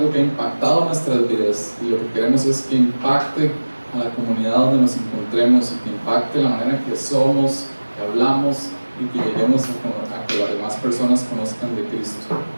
que ha impactado nuestras vidas, y lo que queremos es que impacte a la comunidad donde nos encontremos, y que impacte la manera en que somos, que hablamos, y que lleguemos a que las demás personas conozcan de Cristo.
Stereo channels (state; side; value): inverted; both; correlation -1.00